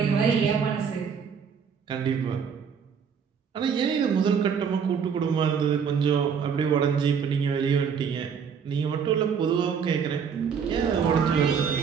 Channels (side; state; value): left; quieter; 6.8 dB